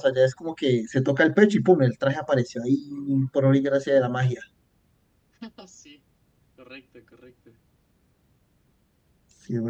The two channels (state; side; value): identical; both; correlation 1.00